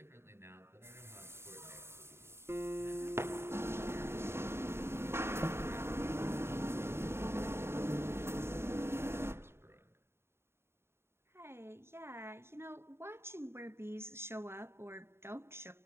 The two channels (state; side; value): late; left; 0.12 ms